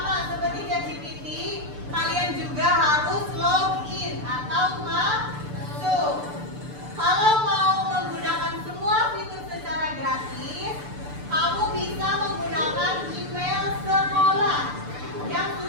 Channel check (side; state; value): left; late; 6.8 ms